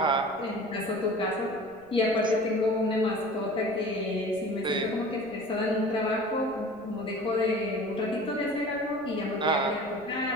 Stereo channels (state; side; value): noise; right; rumble, 25 dB below the sound